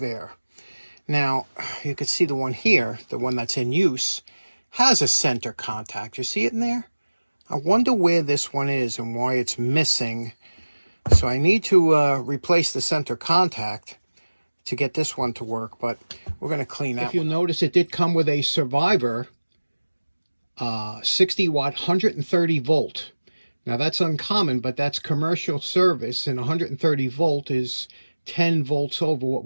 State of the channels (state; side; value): inverted; both; correlation -1.00